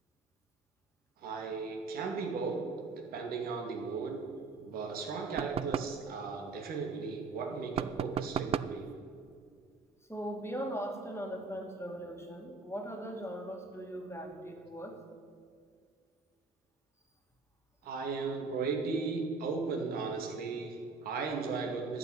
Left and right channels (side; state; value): left; quieter; 4.1 dB